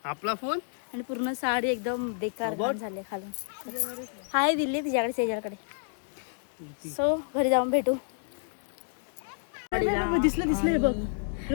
आपला फोन आणि पूर्ण साडी एकदम बेकार घाण झाले खालून. हाय दिल्ली तिच्याकडे शेजारकडे. सो घरी जाऊन भेटू. दिसलं हे बघ.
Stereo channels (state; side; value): silent; right; digital silence